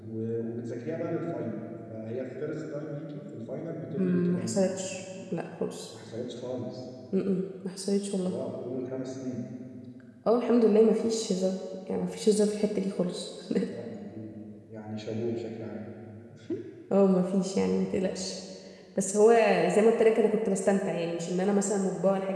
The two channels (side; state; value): both; identical; correlation 1.00